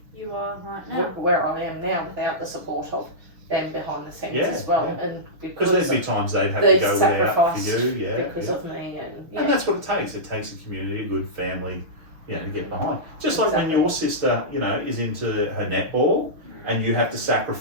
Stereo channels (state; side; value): late; left; 6.2 ms